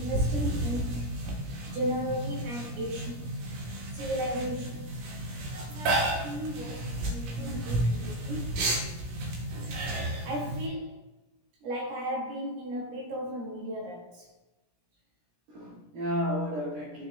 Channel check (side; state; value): left; late; 17 ms